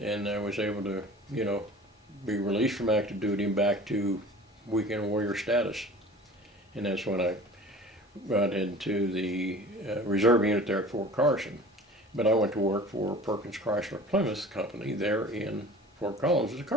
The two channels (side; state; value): both; normal; correlation 0.42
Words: and I was able to, be released from active duty and back to weekend warrior status. And that's when I got into the reserve unit there at Fort Carson. But I went to work for Perkins Chrysler Plymouth Company there in Fort Collins as a